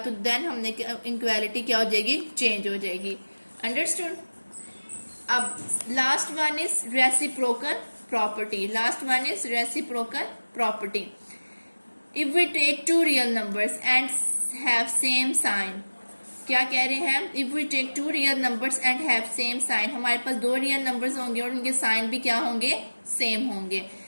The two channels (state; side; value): inverted; both; correlation -1.00